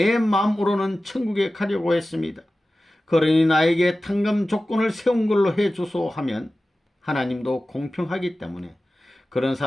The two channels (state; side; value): normal; both; correlation 0.95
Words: 마음으로는 천국에 가려고 했습니다. 그러니 나에게 탕감 조건을 세운 걸로 해주소 하면 하나님도 공평하기 때문에 그런